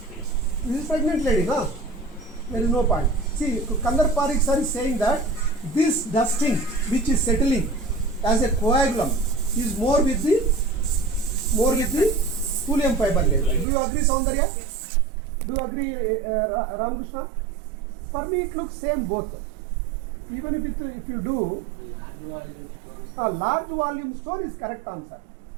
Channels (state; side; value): drops out; left; at 13.7 s